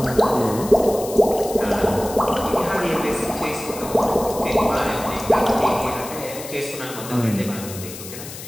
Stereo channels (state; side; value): noise; left; hiss, 12 dB below the sound